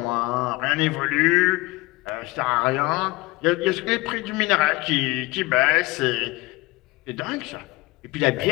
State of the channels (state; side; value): quieter; right; 22.0 dB